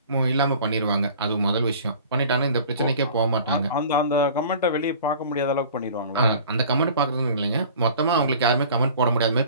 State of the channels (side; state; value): both; inverted; correlation -0.45